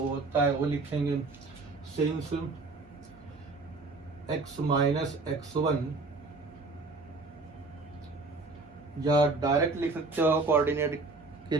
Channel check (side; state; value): left; quieter; 3.6 dB